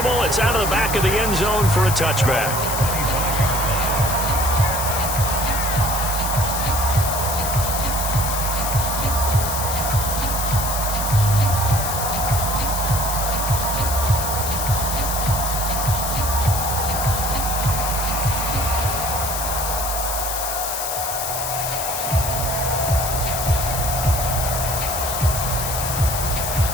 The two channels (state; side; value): noise; left; hiss, 3 dB below the sound